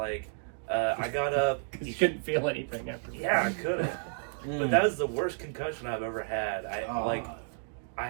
I got up. You couldn't feel anything after that. Yeah, I couldn't. But that was the worst concussion I've ever had. I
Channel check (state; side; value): silent; left; digital silence